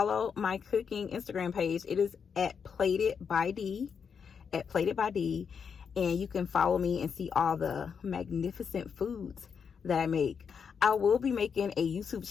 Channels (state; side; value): quieter; right; 6.6 dB